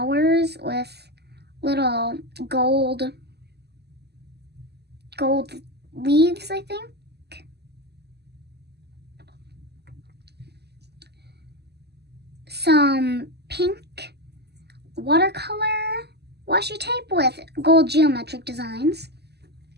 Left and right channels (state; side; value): late; left; 0.48 ms